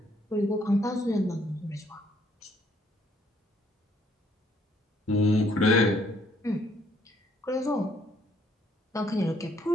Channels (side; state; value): both; normal; correlation 0.66